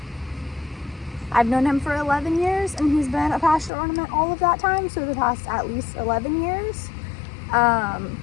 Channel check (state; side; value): drops out; right; at 3.7 s